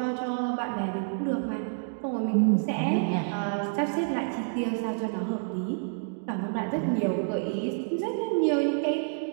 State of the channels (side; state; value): left; silent; digital silence